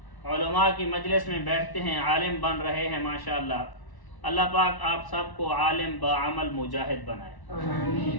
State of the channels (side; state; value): right; late; 1.0 ms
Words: علماء کی مجلس میں بیٹھتے ہیں، عالم بن رہے ہیں ماشاءاللہ۔ اللہ پاک آپ سب کو عالم بعمل مجاہد بنائے۔